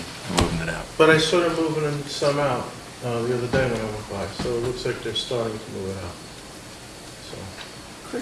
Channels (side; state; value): both; identical; correlation 1.00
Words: moving it out. But I saw them moving some out the other day when I went by, so it looks like they're starting to move it out. So,